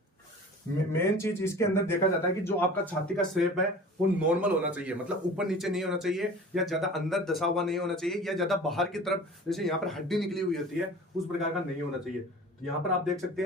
मेन चीज इसके अंदर देखा जाता है कि जो आपका छाती का शेप है वो नॉर्मल होना चाहिए, मतलब ऊपर नीचे नहीं होना चाहिए, या ज्यादा अंदर दसा हुआ नहीं होना चाहिए, या ज्यादा बाहर की तरफ जैसे यहाँ पर हड्डी निकली हुई होती है उस प्रकार का नहीं होना चाहिए। तो यहाँ पर आप देख सकते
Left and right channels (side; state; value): both; normal; correlation 0.41